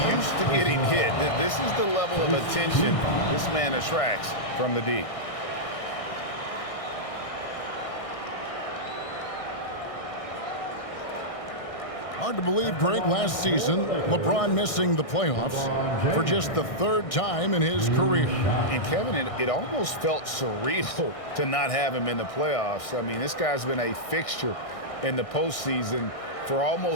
used to getting hit. This is the level of attention this man attracts from the D. Hard to believe, Greg, last season, LeBron missing the playoffs for just the 3rd time in his career. And Kevin, it almost felt surreal to not have him in the playoffs. I mean, this guy's been a fixture in the postseason for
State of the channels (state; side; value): late; right; 1.6 ms